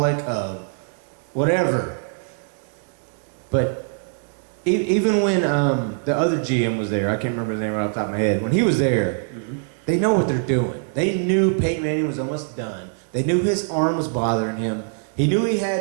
whatever. But even when the other GM was there, I can't remember his name right off the top of my head. When he was there, they know what they're doing. They knew Peyton Manning was almost done. They knew his arm was bothering him. He knew he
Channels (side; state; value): left; silent; 64 dB below the other